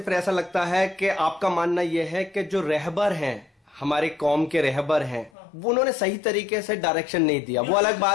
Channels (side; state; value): right; drops out; at 5.3 s